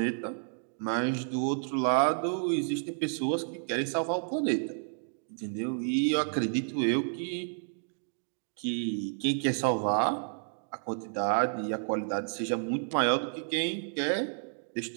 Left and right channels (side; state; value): left; silent; digital silence